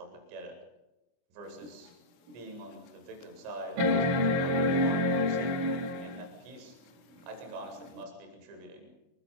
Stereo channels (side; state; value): left; late; 24 ms